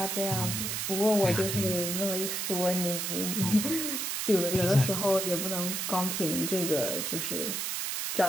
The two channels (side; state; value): right; noise; hiss, 2 dB below the sound